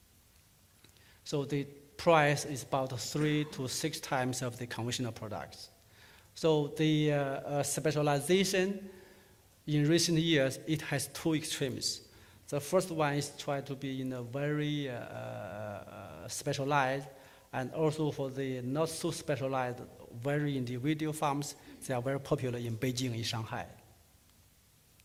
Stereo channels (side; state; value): both; identical; correlation 1.00